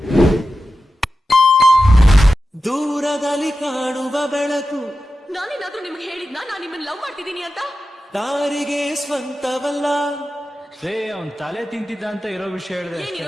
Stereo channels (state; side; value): normal; both; correlation 0.92